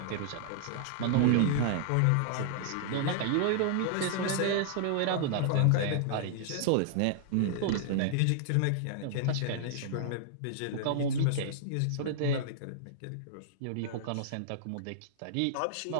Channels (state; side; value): different; both; correlation -0.01